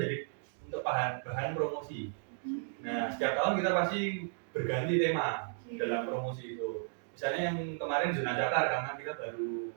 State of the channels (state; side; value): silent; left; digital silence